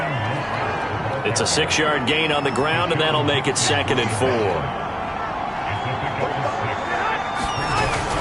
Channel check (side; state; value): both; identical; correlation 1.00